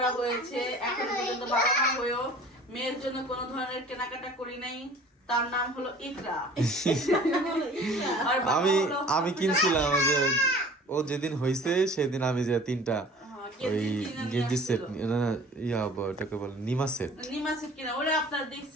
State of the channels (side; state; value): both; normal; correlation 0.46